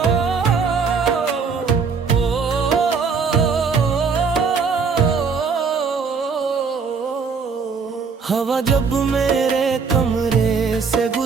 हवा जब मेरे कमरे से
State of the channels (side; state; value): left; quieter; 5.3 dB